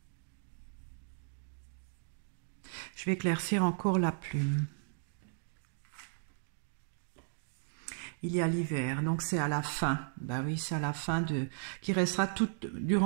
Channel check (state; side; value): silent; left; digital silence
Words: Je vais éclaircir encore la plume. Il y a l'hiver, donc c'est à la fin. Ben oui, c'est à la fin qui restera